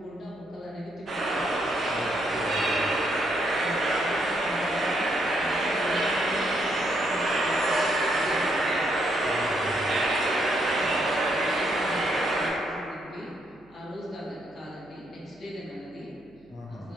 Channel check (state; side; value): noise; right; hum, 30 dB below the sound